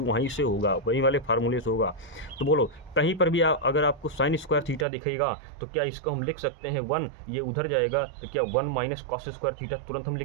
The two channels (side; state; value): left; drops out; at 4.9 s